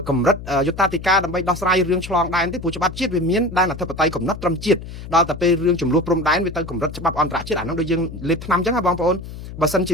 កម្រិតយុត្តាធិការដើម្បីដោះស្រាយរឿងឆ្លងដែនទេព្រោះច្បាប់ជាតិវាមានដែនអធិបតេយ្យកំណត់ត្រឹមជាតិដល់តែពេលរឿងចំនួនព្រំដែនវាទៅកម្រិតច្បាប់អន្តរជាតិអាហ្នឹងដូចយើងលេបថ្នាំអញ្ចឹងហ៎បងប្អូនបើសិនជា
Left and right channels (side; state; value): left; noise; hum, 12 dB below the sound